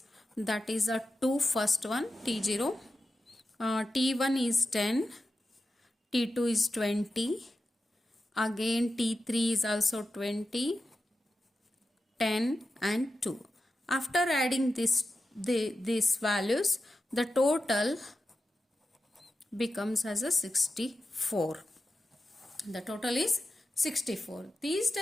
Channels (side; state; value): both; normal; correlation 0.91